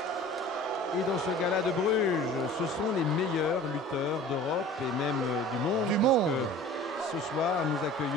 Et dans ce gala de Bruges, ce sont les meilleurs lutteurs d'Europe et même du monde. Du monde. Ce soir, nous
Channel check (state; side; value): normal; both; correlation 0.43